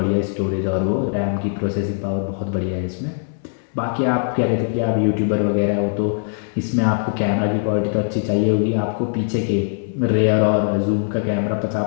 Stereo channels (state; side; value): silent; right; 65 dB below the other